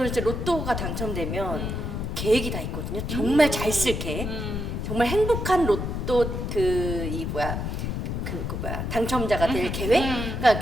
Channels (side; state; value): left; noise; rumble, 3 dB below the sound